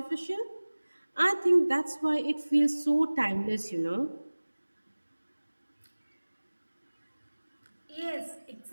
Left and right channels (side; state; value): both; inverted; correlation -1.00